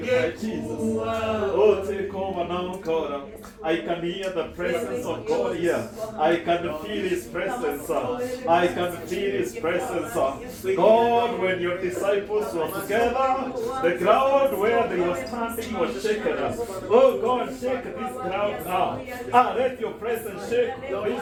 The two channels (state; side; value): identical; both; correlation 1.00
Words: now, Jesus. Oh, take over now, God. I can hear the presence of God here. I can feel His presence. I can feel His presence. God, when your disciples were together, the ground where they were standing was shaken. Oh God, shake this ground now. Let your presence shake